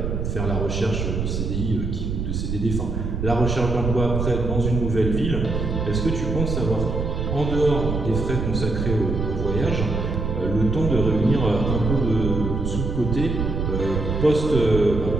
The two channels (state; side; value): noise; right; rumble, 2 dB below the sound